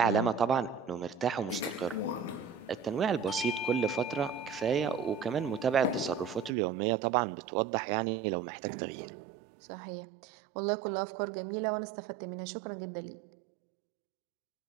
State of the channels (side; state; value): left; drops out; at 6.5 s